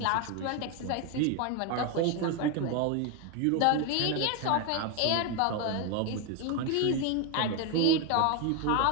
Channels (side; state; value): both; different; correlation 0.01